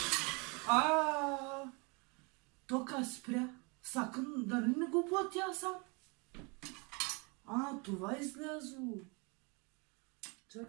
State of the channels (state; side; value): quieter; left; 30.9 dB